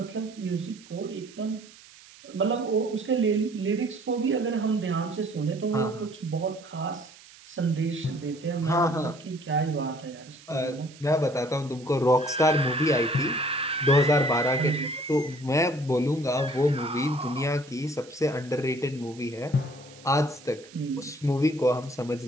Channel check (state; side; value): noise; right; hiss, 22 dB below the sound